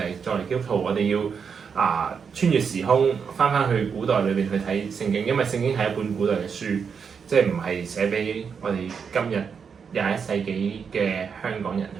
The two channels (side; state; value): left; quieter; 6.3 dB